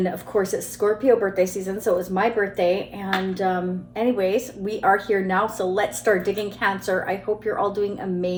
of course it's Scorpio birthday season, so it was my birthday, and anyways, we are here now, so let's start digging Cancer. I hope you're all doing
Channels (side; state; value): both; identical; correlation 1.00